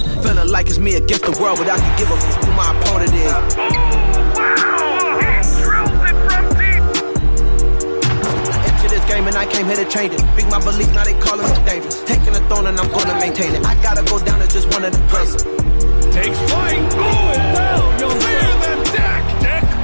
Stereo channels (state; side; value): inverted; both; correlation -1.00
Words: Feeling like it's me against the world, but I can give a f who my opponent is. Game and I came here to change it. Big my belief, now they calling me dangerous. Taking the throne and I'm gonna maintain it. I gotta go down as just one of the greatest. Takes flight, going down. You'll clear the deck. Deck